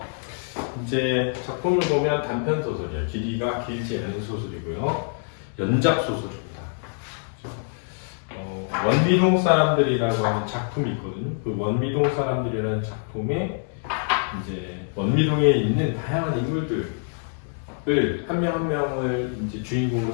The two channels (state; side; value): silent; right; 62 dB below the other